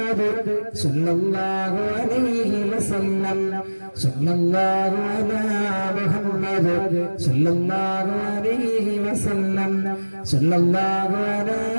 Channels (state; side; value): inverted; both; correlation -1.00